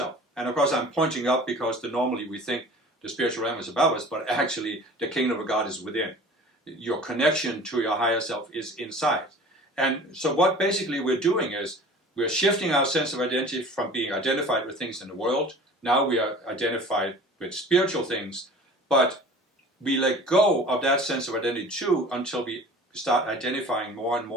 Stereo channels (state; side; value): normal; both; correlation 0.43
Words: And of course I'm pointing up because normally we think the spiritual realm is above us, but actually the kingdom of God is within. Your connection to your higher self is inside. And so what basically we're doing is we're shifting our sense of identity from being identified with things in the world. Now we are identified with spiritual things, but we let go of that sense of identity too until we start identifying more and